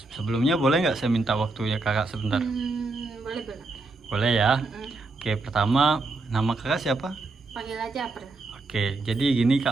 Sebelumnya boleh nggak saya minta waktunya kakak sebentar? Boleh. Boleh ya. Mm-mm. Oke, pertama nama kakak siapa? Panggil aja April. Oke, jadi gini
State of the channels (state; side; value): quieter; left; 3.4 dB